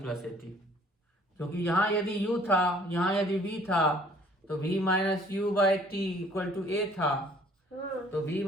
प्लस ए टी? क्योंकि यहाँ यदि u था, यहाँ यदि v था, तो v minus u by t equal to a था। तो v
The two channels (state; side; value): normal; both; correlation 0.57